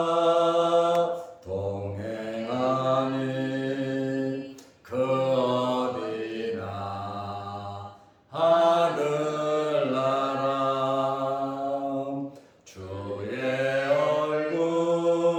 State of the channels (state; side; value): identical; both; correlation 1.00